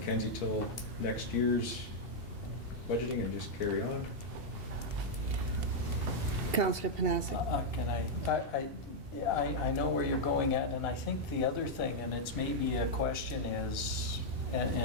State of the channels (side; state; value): left; late; 2.7 ms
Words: till next year's budgeting and just carry on? Councillor Panasic? Can I know where you're going at, and I think the other thing, and it's maybe a question is,